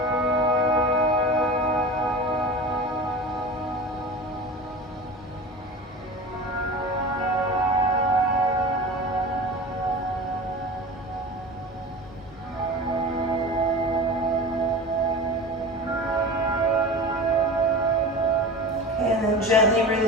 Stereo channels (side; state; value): both; normal; correlation 0.32